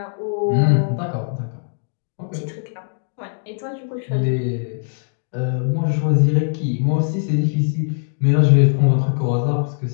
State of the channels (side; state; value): right; silent; digital silence